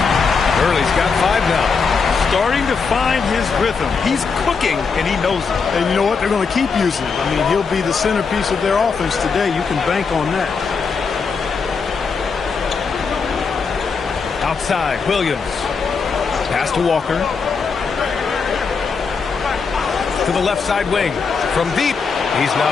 Hurley's got 5 now. Starting to find his rhythm. He's cooking, and he knows it. And you know what? They're going to keep using him. I mean, he'll be the centerpiece of their offense today. You can bank on that. Outside, Williams. Pass to Walker. To the left side wing. From deep. He's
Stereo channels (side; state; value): right; quieter; 5.3 dB